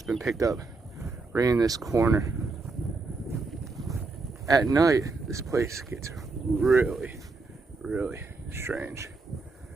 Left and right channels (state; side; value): quieter; left; 3.8 dB